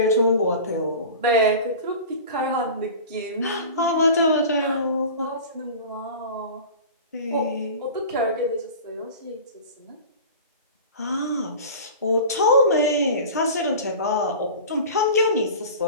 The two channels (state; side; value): inverted; both; correlation -0.37